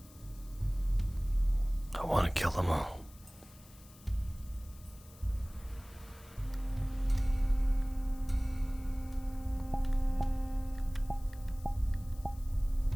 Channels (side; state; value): left; noise; hiss, 23 dB below the sound